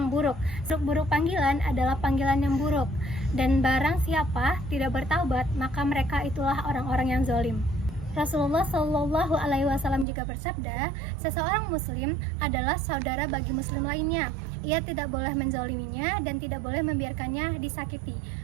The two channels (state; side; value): drops out; left; at 10.1 s